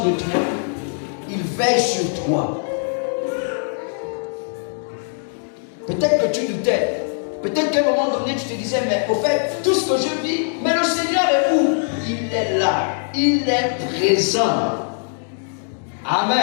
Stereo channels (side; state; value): right; silent; digital silence